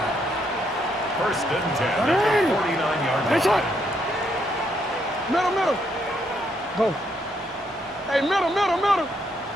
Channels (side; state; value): both; normal; correlation 0.75